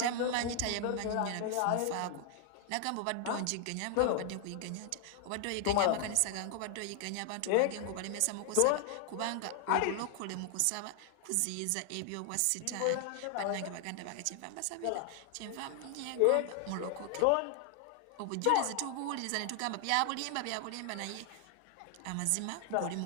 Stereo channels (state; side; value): different; both; correlation 0.00